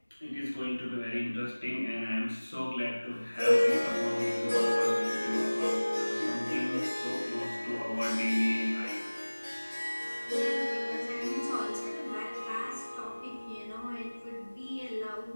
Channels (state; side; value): inverted; both; correlation -1.00